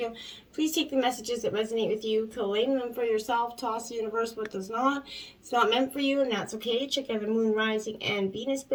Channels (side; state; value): both; identical; correlation 1.00